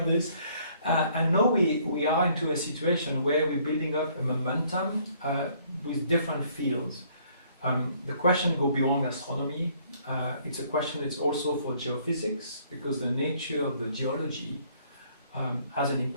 this. And now we are into a situation where we're building up a momentum with different fields. The question goes beyond astronomy. It's a question that's also for geophysics, because the nature of the geology has an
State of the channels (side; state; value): both; inverted; correlation -0.62